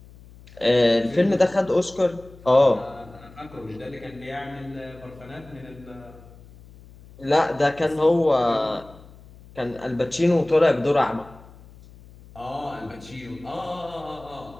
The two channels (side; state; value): left; noise; hum, 22 dB below the sound